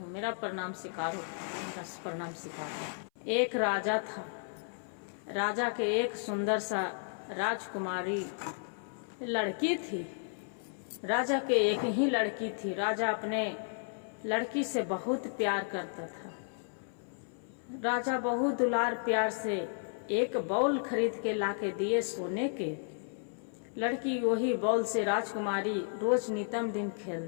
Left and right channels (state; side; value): silent; right; 56 dB below the other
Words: मेरा प्रणाम स्वीकार हो, मेरा प्रणाम स्वीकार हो। एक राजा था, राजा के एक सुंदर सा राजकुमारी लड़की थी। राजा के एक ही लड़की थी। राजा अपने लड़की से बहुत प्यार करता था। राजा बहुत दुलार प्यार से एक बॉल खरीद के लाके दिए सोने के। लड़की वही बॉल से राजकुमारी रोज नितम दिन